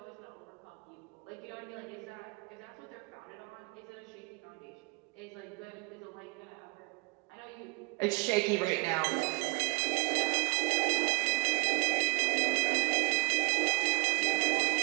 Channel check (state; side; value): quieter; left; 32.1 dB